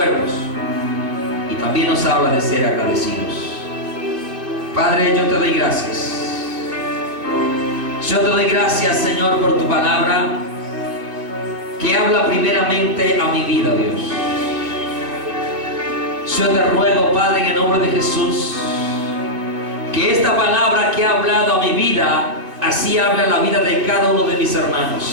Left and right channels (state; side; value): late; left; 2.5 ms